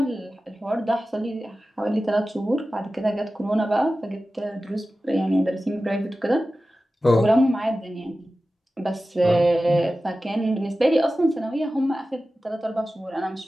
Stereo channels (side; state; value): both; normal; correlation 0.95